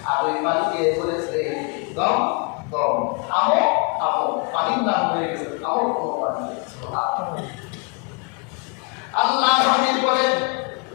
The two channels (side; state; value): right; quieter; 34.1 dB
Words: আর ওই পানিকে বলেছে, দম দম, থামো থামো, পানির নাম হয়ে গেছে থামো থামো পানি। আল্লাহ হাবিব বলেন,